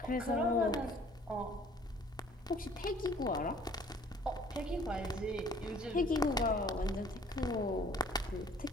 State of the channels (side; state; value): both; normal; correlation 0.55